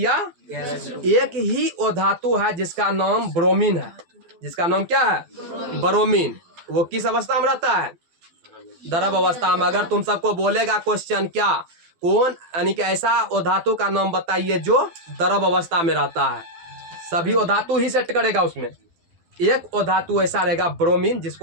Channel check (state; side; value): late; left; 12 ms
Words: एक ही वो धातु है जिसका नाम ब्रोमीन है। जिसका नाम क्या है, ब्रोमीन। वो किस अवस्था में रहता है, द्रव अवस्था में। अगर तुम सबको बोलेगा क्वेश्चन क्या, कौन यानी कि ऐसा वो धातु का नाम बताइए जो द्रव अवस्था में रहता है, सभी वो धातु ही सेट करेगा उसमें। एक वो धातु ऐसा रहेगा ब्रोमीन,